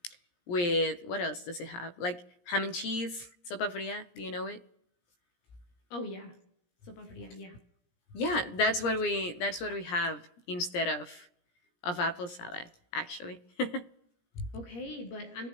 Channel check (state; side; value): late; right; 17 ms